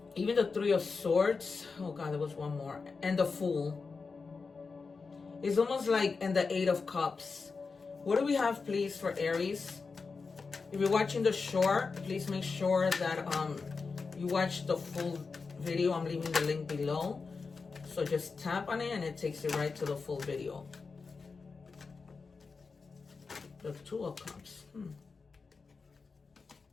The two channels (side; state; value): right; quieter; 4.6 dB